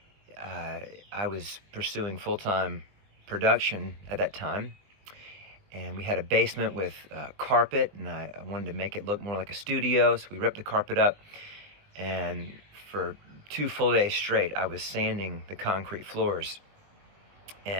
I was pursuing full-time production at that time. And we had a basement with carpet, and I wanted to make it look more like a studio, so we ripped the carpet up, and for 2 full days straight, I was sanding the concrete floors,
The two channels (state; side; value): late; left; 20 ms